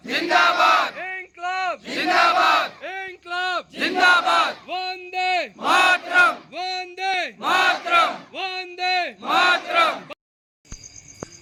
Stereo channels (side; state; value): both; identical; correlation 1.00